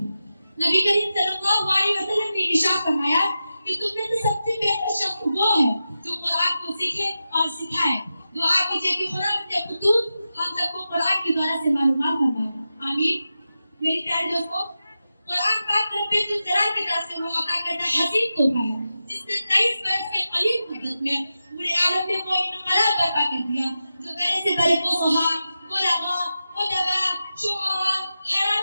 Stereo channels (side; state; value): both; inverted; correlation -0.91